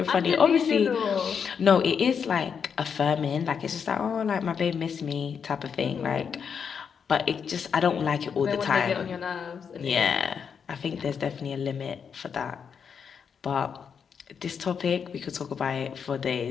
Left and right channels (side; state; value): right; quieter; 6.8 dB